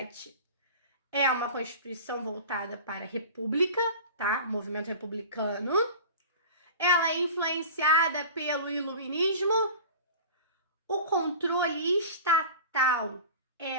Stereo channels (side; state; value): both; inverted; correlation -0.37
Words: é uma Constituição voltada para a República, tá? O movimento republicano. Ela é influenciada pelo Iluminismo. O controle estatal